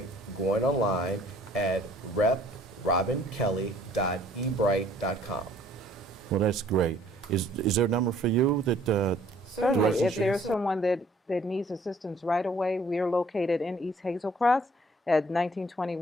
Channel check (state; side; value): normal; both; correlation 0.58